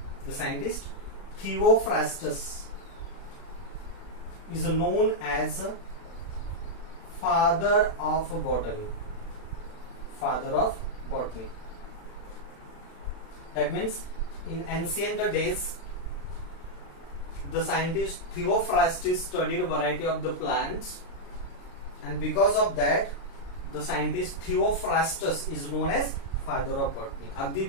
Is known as father of botany. That means in ancient days, the scientist Theophrastus studied a variety of the plants, and because of that, the scientist Theophrastus is known as father of botany. अगदी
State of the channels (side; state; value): right; late; 36 ms